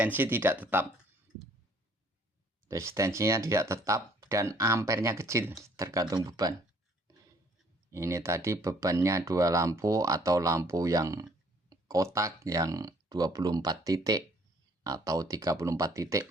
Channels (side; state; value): both; normal; correlation 0.61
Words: tidak tetap. Resistensinya tidak tetap dan ampernya kecil, tergantung beban. Ini tadi bebannya 2 lampu atau lampu yang kotak yang 24 titik atau 34 titik